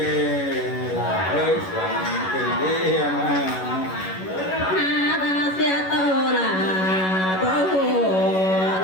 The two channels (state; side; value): late; right; 11 ms